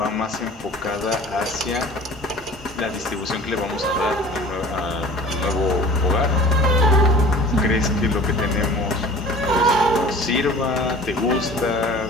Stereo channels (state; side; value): normal; both; correlation 0.44